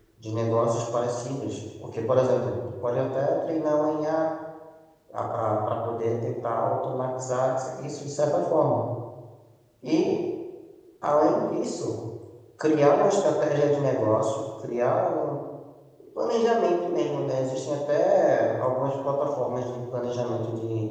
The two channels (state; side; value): identical; both; correlation 1.00